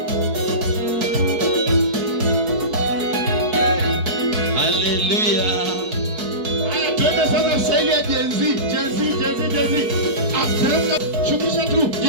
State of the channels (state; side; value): late; left; 4.6 ms